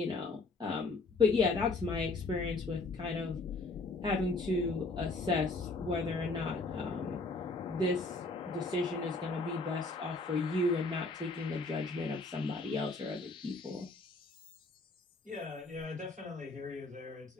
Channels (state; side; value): quieter; right; 3.5 dB